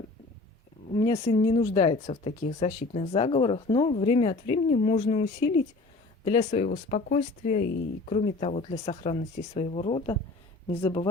меня сын не нуждается в таких защитных заговорах, но время от времени можно усилить для своего спокойствия и, кроме того, для сохранности своего рода. Не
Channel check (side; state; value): right; quieter; 3.3 dB